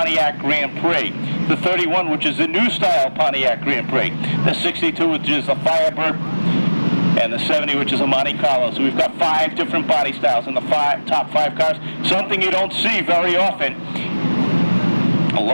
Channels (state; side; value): inverted; both; correlation -1.00